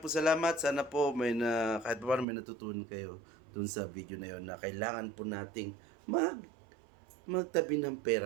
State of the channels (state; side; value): drops out; left; at 2.2 s